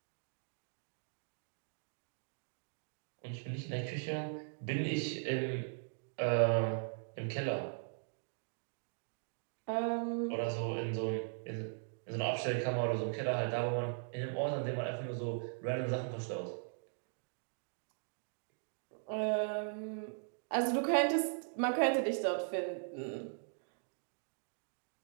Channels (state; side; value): silent; left; digital silence